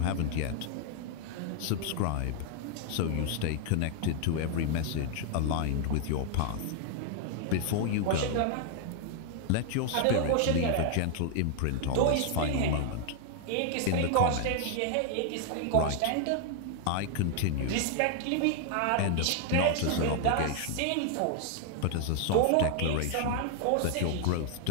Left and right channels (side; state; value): both; different; correlation 0.00